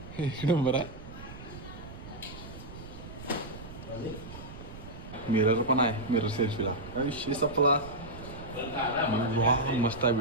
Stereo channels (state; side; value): noise; right; rumble, 13 dB below the sound